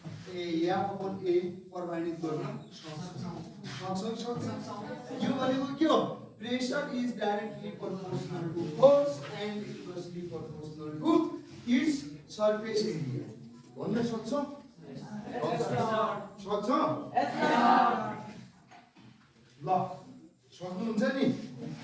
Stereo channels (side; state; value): both; identical; correlation 1.00